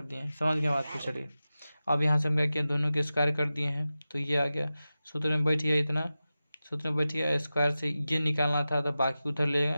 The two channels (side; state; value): both; inverted; correlation -0.94